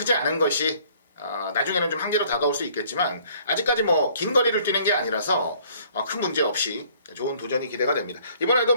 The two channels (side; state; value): both; inverted; correlation -0.58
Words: 않은 것이 나중에는 좀 한계로 다가올 수 있겠지만 아직까지 뭐 긴 거리를 뛰는 게 아니라서 큰 문제 없이 좋은 도전이 기대가 됩니다. 이번에도